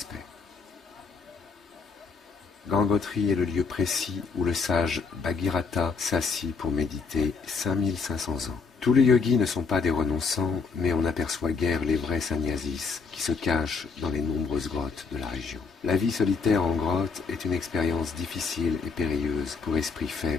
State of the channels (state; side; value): quieter; right; 4.9 dB